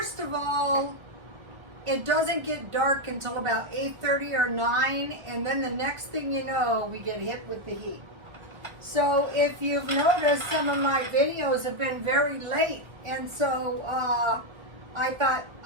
of all, it doesn't get dark until about 8:30 or 9, and then the next thing you know, we get hit with the heat. So if you've noticed, some of my videos have been very late, and so I thought,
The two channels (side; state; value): left; late; 1.1 ms